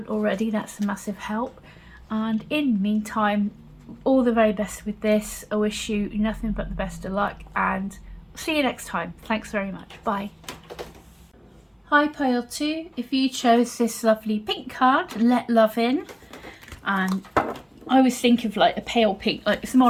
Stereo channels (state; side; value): identical; both; correlation 1.00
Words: already, that's a massive help. And in the meantime, all the very best with this. I wish you nothing but the best of luck, and see you next time. Thanks very much. Bye. Hi Pile 2, if you chose this lovely pink card, Let Love In, and I always think of like a pale pink, like it's more